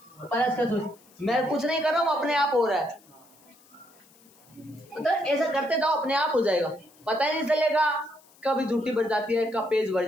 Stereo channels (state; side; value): noise; left; hiss, 28 dB below the sound